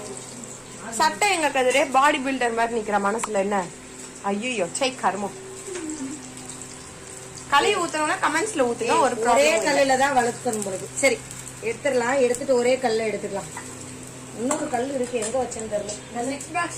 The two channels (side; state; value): both; identical; correlation 1.00